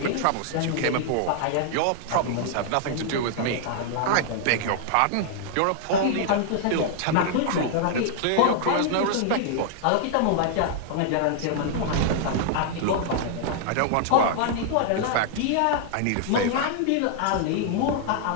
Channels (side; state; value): both; different; correlation -0.01